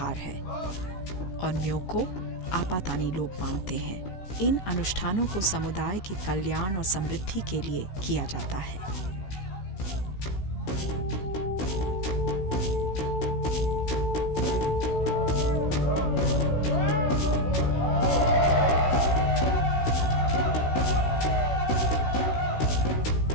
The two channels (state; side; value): late; right; 16 ms